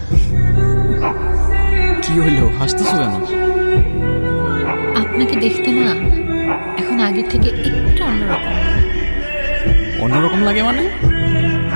কি হইলো, হাসতেছো কেন? আপনাকে দেখতে না এখন আগের থেকে একটু অন্যরকম। অন্যরকম লাগে মানে?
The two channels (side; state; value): both; inverted; correlation -1.00